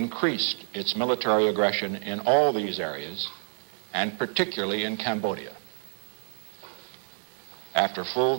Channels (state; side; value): silent; left; digital silence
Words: its military aggression in all these areas, and particularly in Cambodia. After full